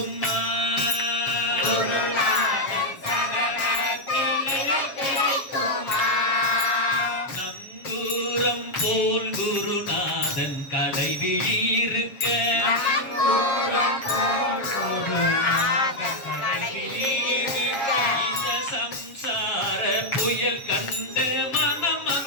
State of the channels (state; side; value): late; right; 7.4 ms